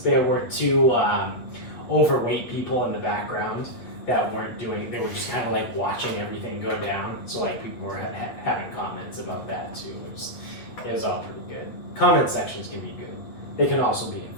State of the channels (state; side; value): late; right; 8.6 ms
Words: were two overweight people in the background that weren't doing. They were just kind of like watching everything go down. So like people were having comments about that too. It was all pretty good. Comment sections can be good. They can also be